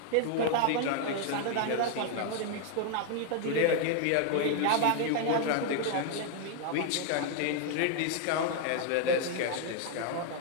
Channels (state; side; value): different; both; correlation 0.00